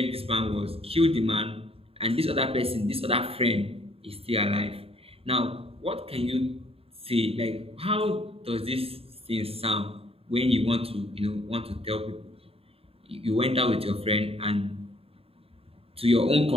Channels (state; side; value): late; left; 0.28 ms